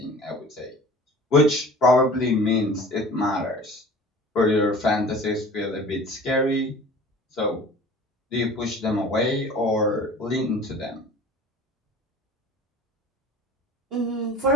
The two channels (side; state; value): both; normal; correlation 0.43